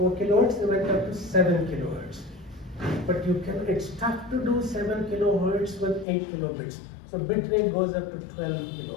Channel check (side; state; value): right; drops out; at 6.1 s